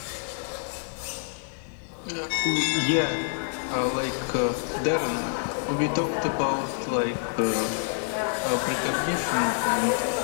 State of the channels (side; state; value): right; silent; digital silence